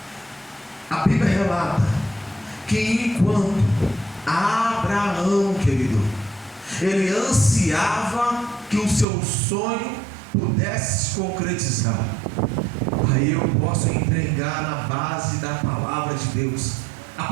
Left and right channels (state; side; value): drops out; left; at 9.1 s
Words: A Bíblia relata que enquanto Abraão, querido, ele ansiava que o seu sonho pudesse se concretizar. Aí eu posso entregar na base da palavra de Deus a